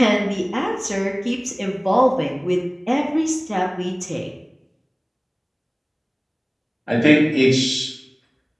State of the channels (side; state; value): both; identical; correlation 1.00